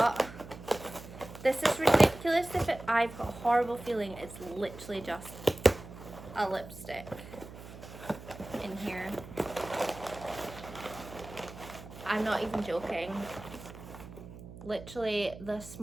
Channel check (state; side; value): noise; right; hum, 15 dB below the sound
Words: this is ridiculous. I've got a horrible feeling it's literally just a lipstick in here. I'm not even joking. Literally the